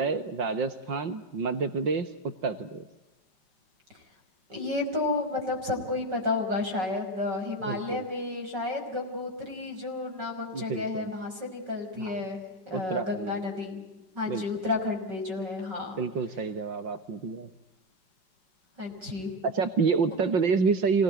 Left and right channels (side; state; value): left; late; 5.3 ms